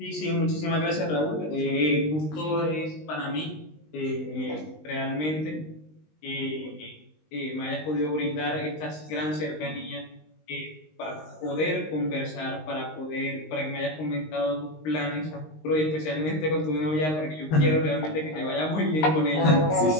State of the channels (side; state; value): right; late; 19 ms